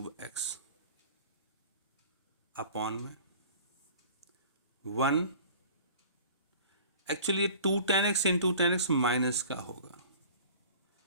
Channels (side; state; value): both; inverted; correlation -0.45